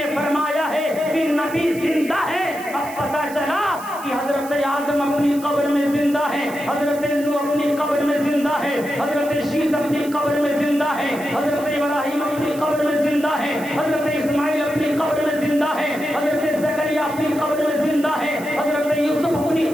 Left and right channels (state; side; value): noise; right; hiss, 17 dB below the sound